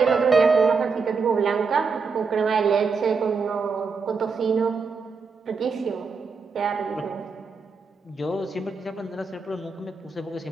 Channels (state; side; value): quieter; left; 4.9 dB